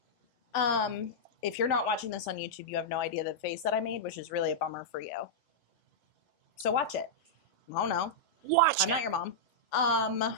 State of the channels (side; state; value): both; normal; correlation -0.08